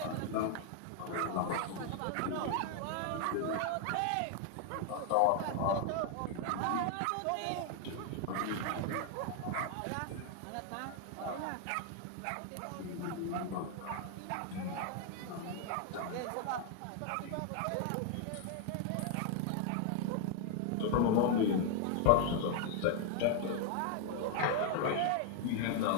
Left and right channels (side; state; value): both; different; correlation 0.00